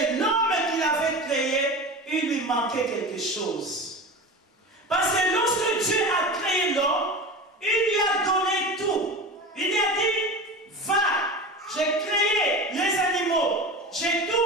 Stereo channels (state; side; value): normal; both; correlation 0.30